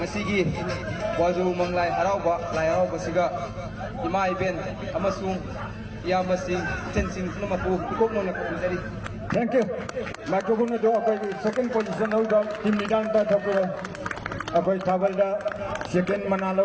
ꯋꯥꯖꯨ ꯃꯪꯂꯥꯏ ꯍꯔꯥꯎꯕ ꯂꯥꯏ ꯍꯔꯥꯎꯕꯁꯤꯒ ꯏꯃꯥ ꯏꯕꯦꯟ ꯑꯃꯁꯨꯡ ꯏꯌꯥꯝꯕꯁꯤꯡ ꯏꯆꯟꯁꯤꯡ ꯄꯨꯝꯅꯃꯛꯄꯨ ꯏꯀꯣꯛꯅꯅ ꯈꯨꯔꯨꯝꯖꯔꯤ. Thank you. Microphone do apai second position hoida team leader ta thapura apai thabal da second manalo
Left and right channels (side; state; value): both; identical; correlation 1.00